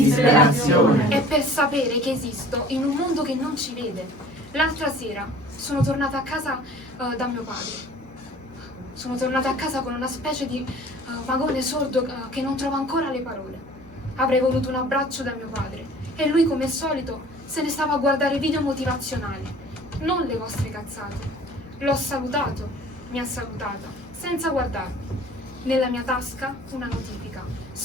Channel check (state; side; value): normal; both; correlation 0.48